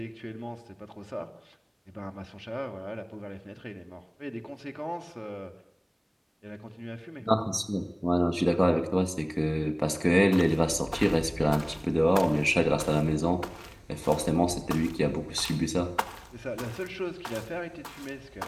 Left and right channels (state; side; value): identical; both; correlation 1.00